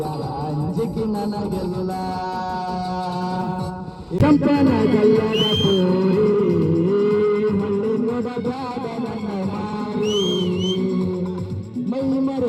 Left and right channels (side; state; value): both; identical; correlation 1.00